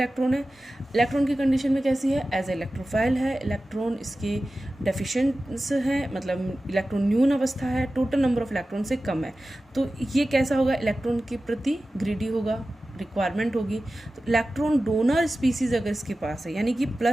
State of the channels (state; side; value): normal; both; correlation 0.95